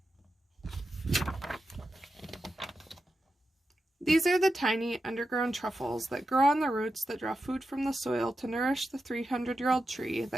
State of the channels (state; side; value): normal; both; correlation 0.90